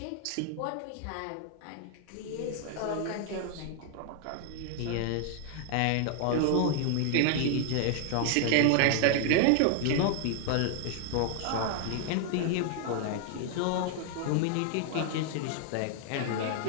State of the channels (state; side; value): different; both; correlation 0.00